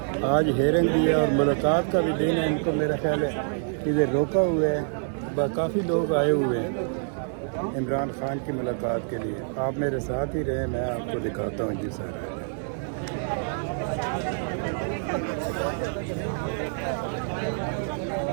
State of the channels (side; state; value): left; silent; 60 dB below the other